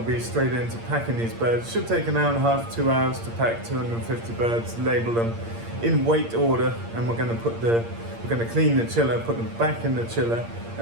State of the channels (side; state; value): left; late; 8.7 ms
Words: be straight into packing these birds. Should take an hour and a half, 2 hours to pack 250 birds, label them in weight order, and we're going to clean the chiller, put them back in the chiller,